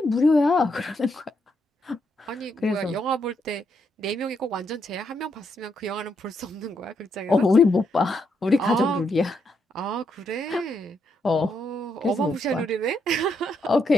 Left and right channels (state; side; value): normal; both; correlation 0.78